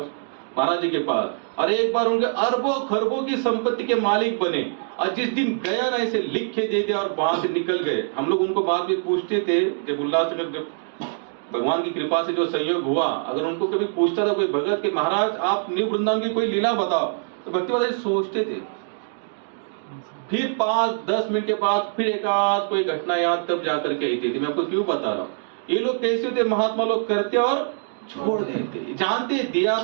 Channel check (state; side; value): silent; left; digital silence